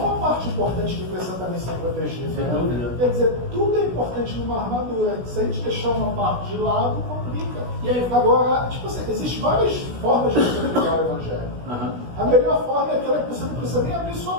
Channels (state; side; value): late; left; 16 ms